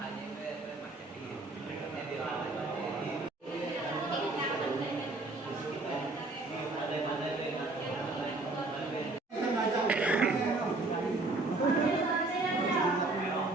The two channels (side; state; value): left; quieter; 3.1 dB